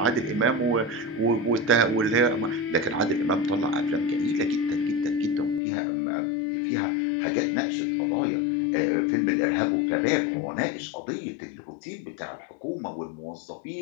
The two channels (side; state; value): right; drops out; at 5.6 s